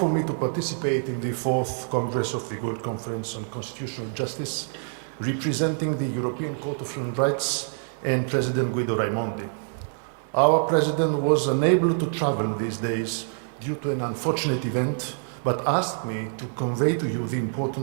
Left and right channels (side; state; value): left; silent; digital silence